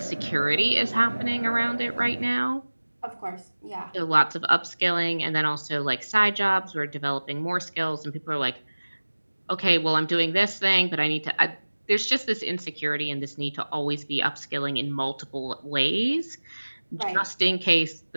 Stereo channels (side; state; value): both; inverted; correlation -1.00